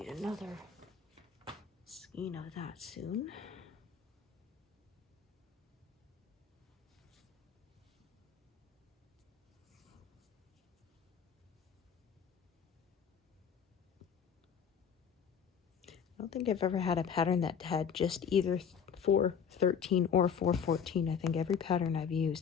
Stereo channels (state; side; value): quieter; right; 7.2 dB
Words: Another skein of that soon. I don't think I've ever had a pattern that had just either 413 or 414. I think every pattern I've